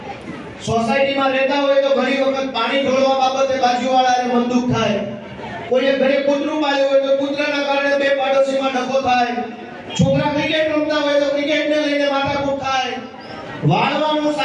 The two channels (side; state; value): both; identical; correlation 1.00